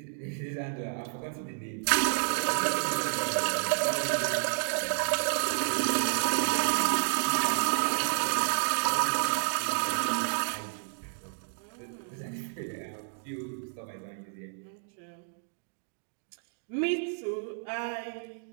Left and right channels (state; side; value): silent; left; digital silence